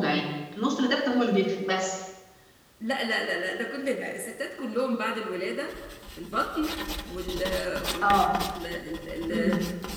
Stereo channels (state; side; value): identical; both; correlation 1.00